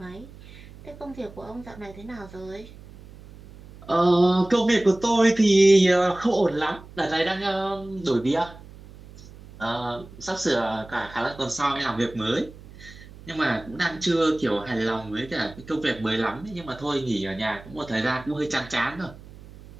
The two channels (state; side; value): noise; right; hum, 19 dB below the sound